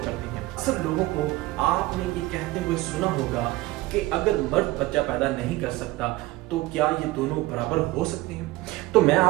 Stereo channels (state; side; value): quieter; left; 18.8 dB